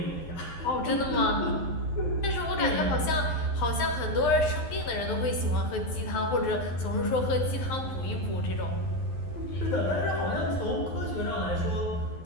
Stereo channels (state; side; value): late; right; 12 ms